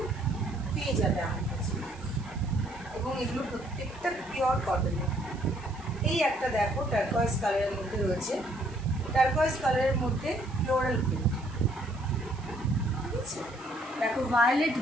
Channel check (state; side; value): noise; right; hiss, 24 dB below the sound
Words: পেয়ে যাবে আমার কাছে, এবং এগুলো প্রত্যেকটা পিওর কটনের। এই একটা দেখো টার্কোয়েজ কালারের মধ্যে রয়েছে, টার্কোয়েজ কালারের মধ্যে ফ্লোরাল প্রিন্ট। ঠিক আছে, দেখো ভায়োলেট